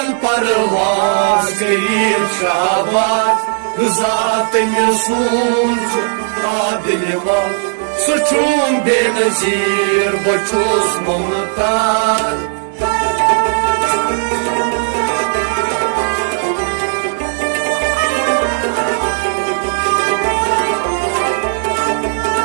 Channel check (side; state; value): left; silent; digital silence